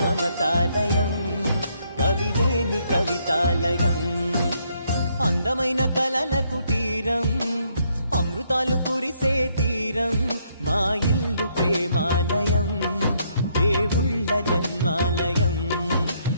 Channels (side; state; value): both; inverted; correlation -0.72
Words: మమతాలయం, కవిలేని కవితాలయం. అందమైన కలల కుటీరం, అమృతాలు కురిసే తీరం, మా ఇల్లు ప్రేమాలయం, దేవుళ్ళ జన్మాలయం.